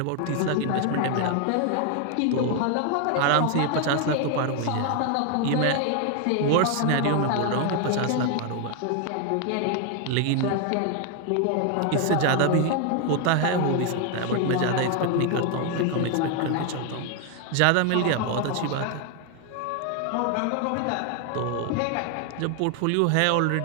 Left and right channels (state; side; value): different; both; correlation 0.01